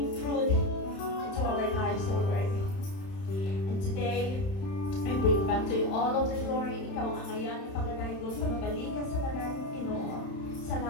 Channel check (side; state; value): right; late; 31 ms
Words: fruit into our lives, O Lord. And today, I bring back to you all of the glory. Ikaw ang angayan, pagdadaigod, pagbabalikan sa lalaking Pinoo.